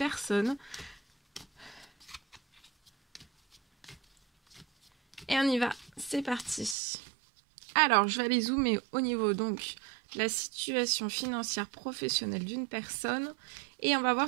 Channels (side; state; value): left; drops out; at 6.8 s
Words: Et on y va, c'est parti. Alors, je vais aller zoomer au niveau donc de la situation financière professionnelle d'une personne. Et on va